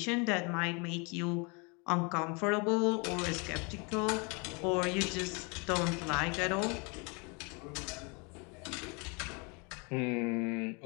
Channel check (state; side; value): quieter; right; 31.6 dB